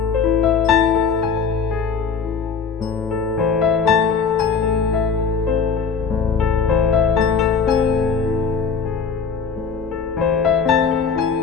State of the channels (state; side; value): quieter; right; 5.9 dB